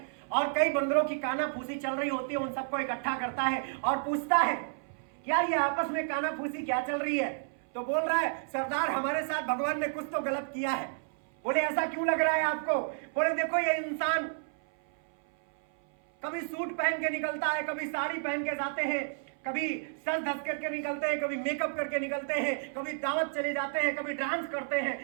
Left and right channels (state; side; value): silent; left; 57 dB below the other